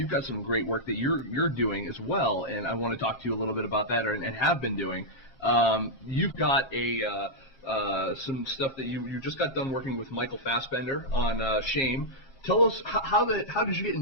got some great work that you're doing as well, and I want to talk to you a little bit about that, and have been doing. You've got some stuff that you just got done working with Michael Fassbender on Shame. Tell us how did you get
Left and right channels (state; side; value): late; right; 1.3 ms